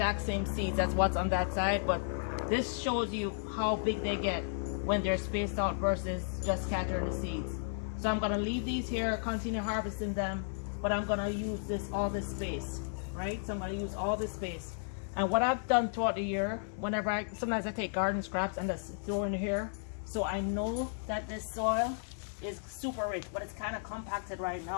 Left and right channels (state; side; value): silent; right; digital silence